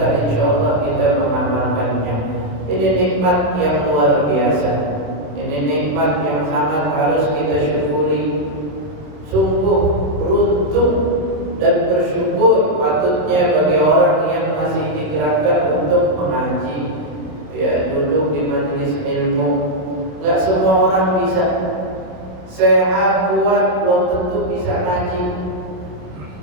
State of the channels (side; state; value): left; late; 27 ms